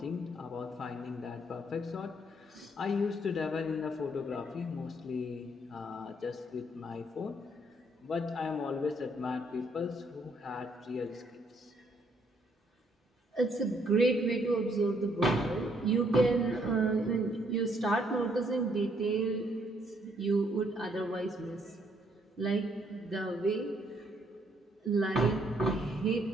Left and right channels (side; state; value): both; normal; correlation 0.69